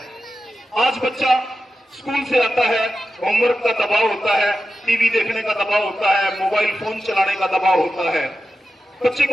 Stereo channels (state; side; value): normal; both; correlation 0.92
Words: आज बच्चा स्कूल से आता है, होमवर्क का दबाव होता है, टीवी देखने का दबाव होता है, मोबाइल फोन चलाने का दबाव होता है। बच्चे